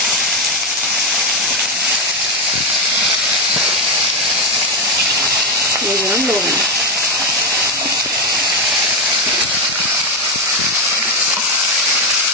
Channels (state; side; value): normal; both; correlation 0.08